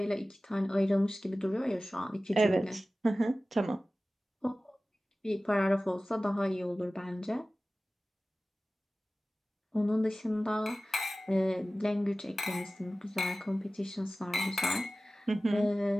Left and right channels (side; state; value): both; normal; correlation 0.97